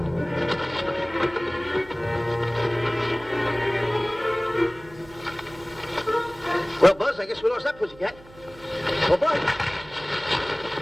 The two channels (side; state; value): right; noise; hum, 22 dB below the sound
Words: Well, Buzz, I guess we lost that pussycat. Well, Buzz.